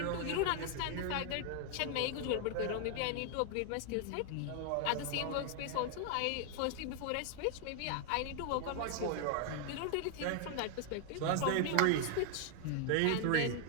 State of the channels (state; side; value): different; both; correlation 0.00